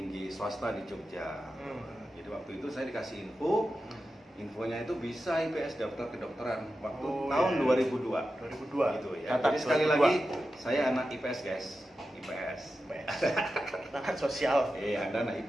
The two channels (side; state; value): both; normal; correlation 0.91